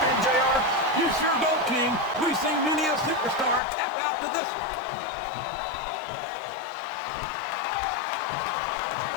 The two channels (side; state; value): right; drops out; at 3.6 s